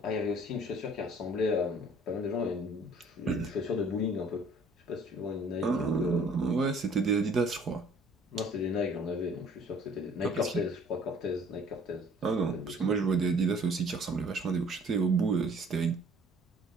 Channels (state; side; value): normal; both; correlation 0.55